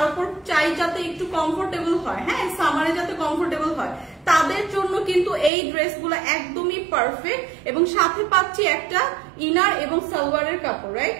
উপর চাই যাতে একটু কমফোর্টেবল হয়। হ্যাঁ, সামারে যাতে কমফোর্টেবল হয়, তাদের জন্য কিন্তু এই ড্রেসগুলো একদমই পারফেক্ট এবং সাথে পাচ্ছি একটা ইনার এবং সালোয়ারের কাপড়, রাইট?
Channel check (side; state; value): left; drops out; at 5.5 s